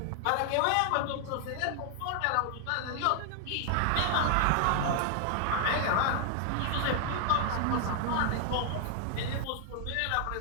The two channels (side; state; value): both; different; correlation 0.00